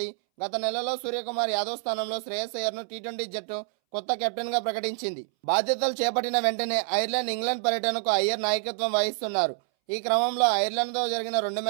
గత నెలలో సూర్యకుమార్ యాదవ్ స్థానంలో శ్రేయస్ అయ్యర్ను టీ20 జట్టు కొత్త కెప్టెన్గా ప్రకటించింది. బాధ్యతలు చేపట్టిన వెంటనే ఐర్లాండ్, ఇంగ్లాండ్ పర్యటనకు అయ్యర్ నాయకత్వం వహిస్తున్నారు. ఈ క్రమంలో ఐర్లాండ్తో జరిగిన 2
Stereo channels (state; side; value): silent; left; 60 dB below the other